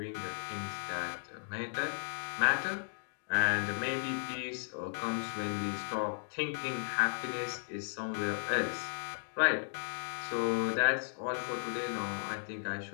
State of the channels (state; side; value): silent; right; digital silence